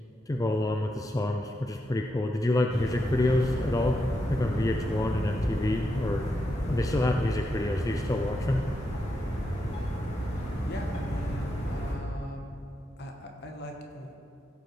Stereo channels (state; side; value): normal; both; correlation 0.84